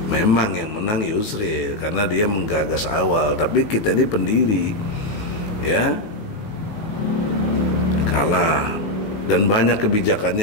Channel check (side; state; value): right; late; 19 ms